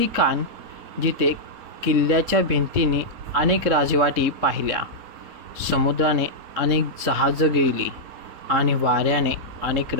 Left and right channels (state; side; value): late; left; 3.7 ms